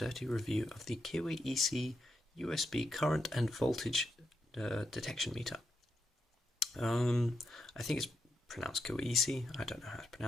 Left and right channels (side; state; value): both; normal; correlation 0.83